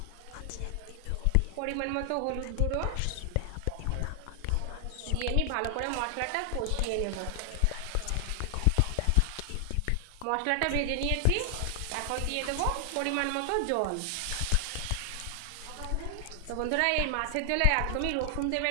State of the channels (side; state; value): both; different; correlation 0.00